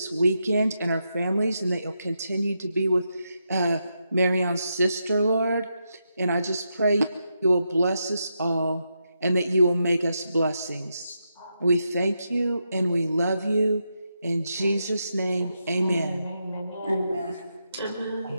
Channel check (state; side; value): inverted; both; correlation -0.84